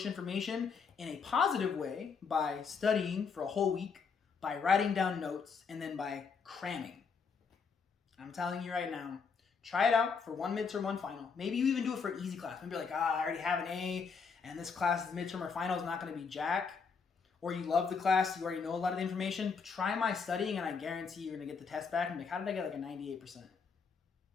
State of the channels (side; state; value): right; quieter; 5.6 dB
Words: information in a positive way by studying for a whole week, by writing down notes, and then by cramming. I'm telling you right now, try it out for 1 midterm, 1 final. Maybe you even do it for an easy class. Maybe you're like, I already have an A, and this class's midterm or final is not going to be jack. Or you love the class, you already know a lot of the information. Try my studying, and I guarantee you're going to get the test back and be like, how did I get like a 98%?